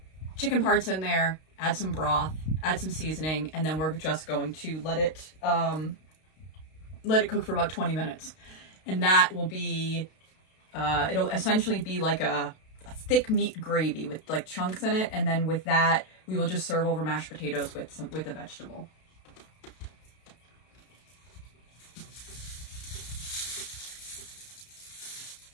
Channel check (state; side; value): late; right; 32 ms